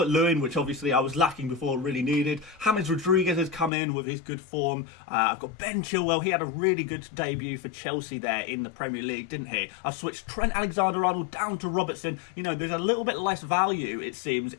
which obviously I was lacking before, really needed. James Rodriguez has come in with his good form. I've got Ben Chilwell. He had a really good debut for Chelsea there in the Premier League, didn't he? I've switched Trent Alexander-Arnold down to Robertson. You know, there's a little bit less value, it seems,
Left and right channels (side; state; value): right; drops out; at 3.7 s